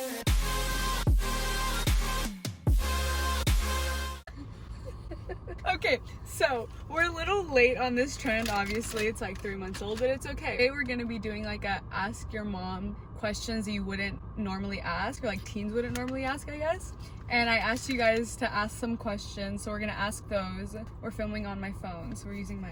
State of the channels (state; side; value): identical; both; correlation 1.00